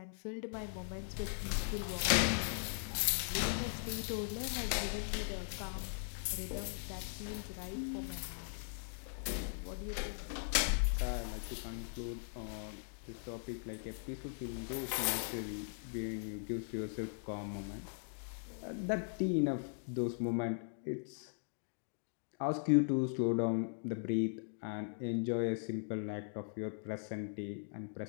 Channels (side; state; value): right; silent; digital silence